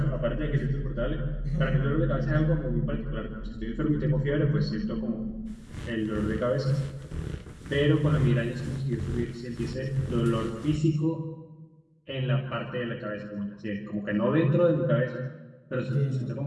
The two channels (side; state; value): both; identical; correlation 1.00